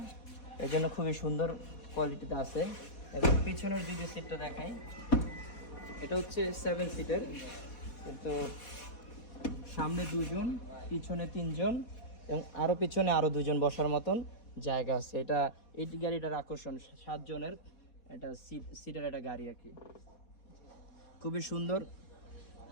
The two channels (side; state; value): right; late; 4.1 ms